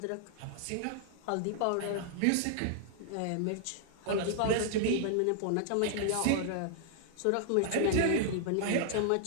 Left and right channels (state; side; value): different; both; correlation -0.01